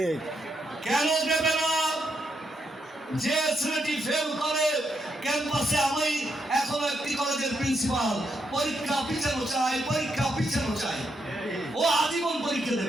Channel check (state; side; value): normal; both; correlation 0.80